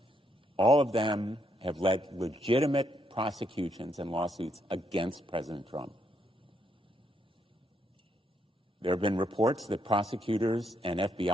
All of them have led legitimate prosecutions and lawsuits against President Trump. There have been reports that prosecutors and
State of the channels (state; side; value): normal; both; correlation 0.76